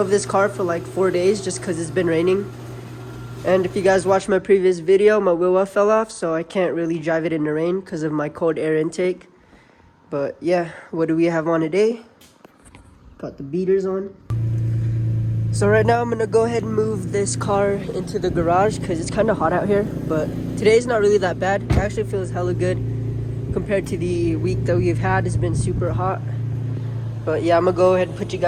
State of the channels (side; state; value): both; identical; correlation 1.00